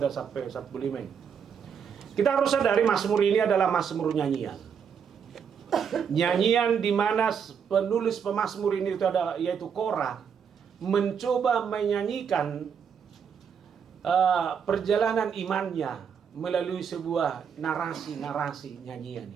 sampai 45. Kita harus sadari Mazmur ini adalah Mazmur nyanyian. Nyanyian di mana penulis pemazmur ini itu ada yaitu Korah mencoba menyanyikan perjalanan imannya melalui sebuah narasi nyanyian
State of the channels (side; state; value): left; quieter; 7.2 dB